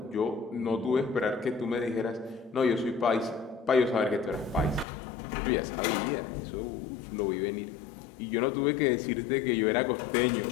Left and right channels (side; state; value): right; drops out; at 4.9 s